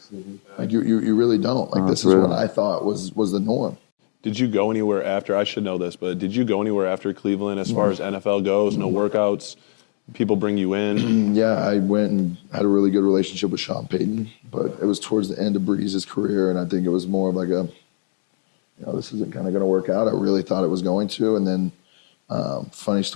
Like, you really don't. Like, this is what I thought was the norm. Did you go anywhere after? I should know this, but did you go anywhere after Cleveland as far as NFL goes? No workouts? People bring you in? Yeah, I went and had a really good relationship with Sean Payton, but it was towards the end of Breeze's career, and I think it was more of like this isn't kind of going to work out. I really thought it was going to, and then funny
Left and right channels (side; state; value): right; silent; digital silence